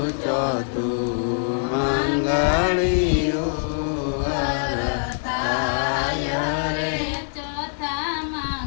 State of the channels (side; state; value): right; silent; digital silence